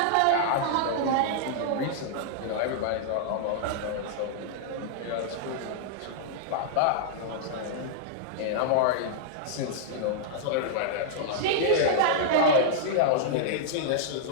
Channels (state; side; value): different; both; correlation -0.01